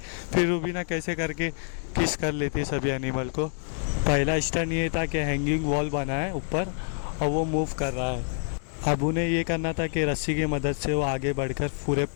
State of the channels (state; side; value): silent; right; digital silence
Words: फिर रुबीना कैसे करके किस कर लेती है सभी एनिमल को। पहला स्टंट ये था कि हैंगिंग वॉल बना है ऊपर और वो मूव कर रहा है। अब उन्हें ये करना था कि रस्सी की मदद से वो आगे बढ़कर पूरे